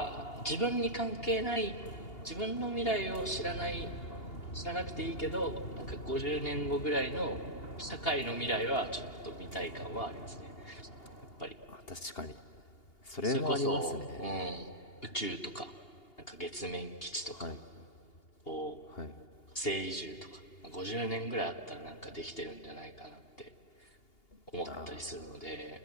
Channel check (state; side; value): late; right; 2.8 ms